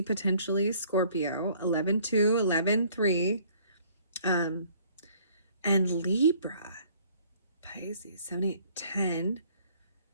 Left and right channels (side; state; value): both; inverted; correlation -0.59